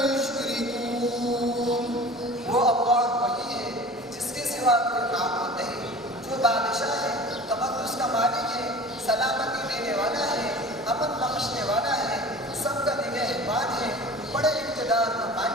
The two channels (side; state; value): both; normal; correlation 0.40